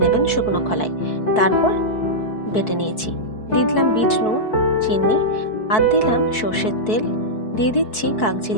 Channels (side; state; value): right; late; 4.6 ms